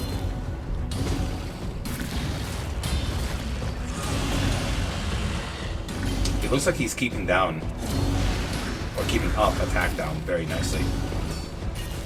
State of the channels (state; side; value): identical; both; correlation 1.00